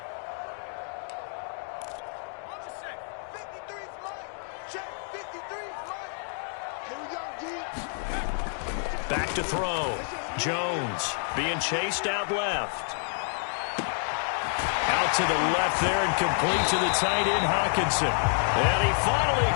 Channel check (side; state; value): right; silent; 59 dB below the other